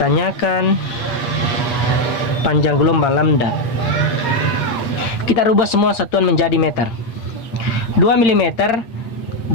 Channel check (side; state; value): right; late; 8.7 ms